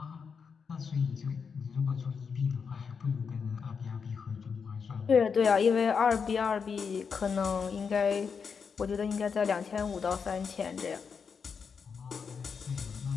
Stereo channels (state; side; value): quieter; right; 6.0 dB